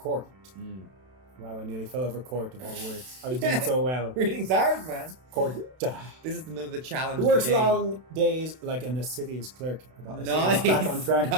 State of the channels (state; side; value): late; left; 32 ms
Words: Mm. Wow, I nearly fell over court of all words. I was doing so well. Reading's hard, man. Court. This is another challenge. He works of the game. long days like an assiduous clerk. Nice. Back on track.